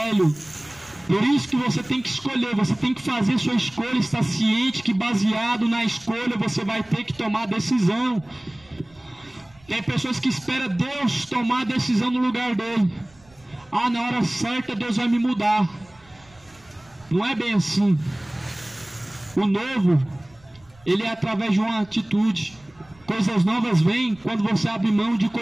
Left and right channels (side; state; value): right; noise; rumble, 28 dB below the sound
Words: Por isso que você tem que escolher, você tem que fazer sua escolha, estar ciente que baseado na escolha você vai ter que tomar decisão. Tem pessoas que esperam Deus tomar a decisão no lugar dele. Ah, na hora certa Deus vai me mudar. Não é bem assim. O novo, ele é através de uma atitude. Coisas novas vêm quando você abre mão de